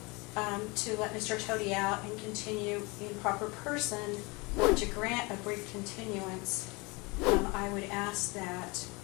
to let Mr. Toti out and continue in proper person, or to grant a brief continuance, I would ask that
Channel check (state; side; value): quieter; right; 26.7 dB